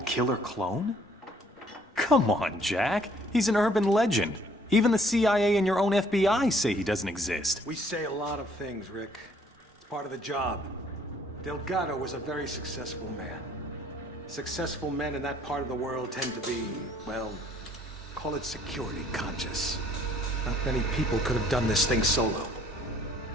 killer clone? Come on, Jack. He's an urban legend. Even the CIA and your own FBI say he doesn't exist. We say a lot of things, Rick. It's part of the job. Delgado was a very successful man. Successful men in that part of the world tend to be, well, call it security conscious. Not many people could have done this thing solo.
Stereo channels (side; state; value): both; normal; correlation 0.61